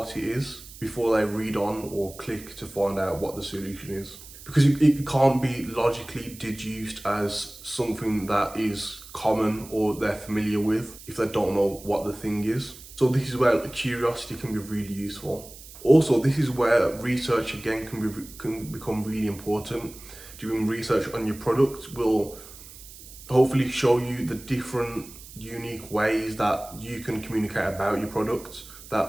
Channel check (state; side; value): noise; right; hiss, 17 dB below the sound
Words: it is before they read on or click to find out what the solution is. Because it can't be logically deduced as something that is common or they're familiar with if they don't know what the thing is. So this is where curiosity can be really useful. Also, this is where research again can become really important. Doing research on your product will hopefully show you the different unique ways that you can communicate about your product